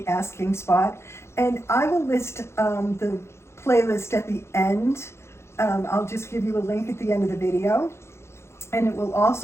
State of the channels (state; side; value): late; right; 0.13 ms